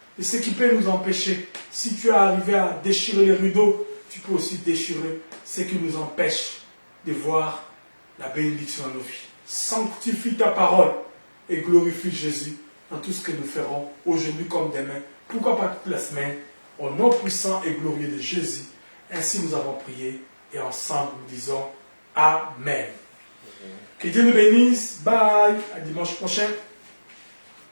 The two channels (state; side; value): inverted; both; correlation -1.00